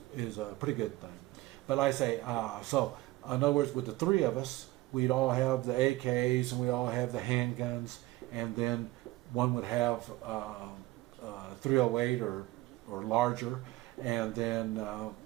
is a pretty good thing. But like I say, so in other words, with the three of us, we'd all have the AKs and we all have the handguns, and then one would have 308 or larger, and then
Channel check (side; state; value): left; quieter; 18.9 dB